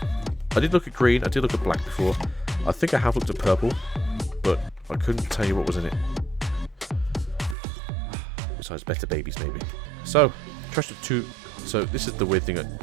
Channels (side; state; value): left; drops out; at 7.6 s